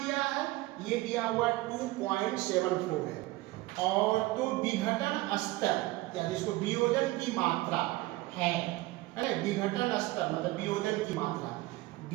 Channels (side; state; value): left; quieter; 19.2 dB